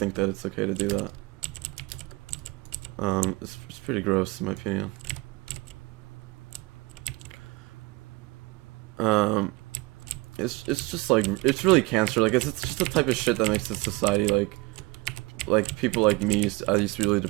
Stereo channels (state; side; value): quieter; left; 23.2 dB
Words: that it's okay to do that. It's pretty gross in my opinion. It's just like, it's really cancer. Like it's just the type of shit that makes this society like people like me I used to be really